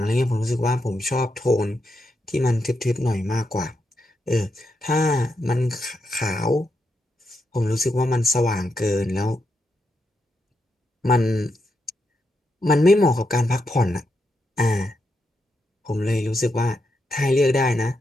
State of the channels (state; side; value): normal; both; correlation 0.83